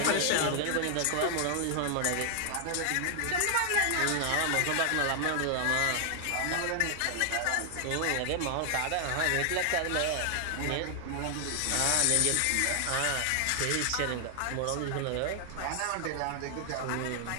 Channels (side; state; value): both; different; correlation 0.00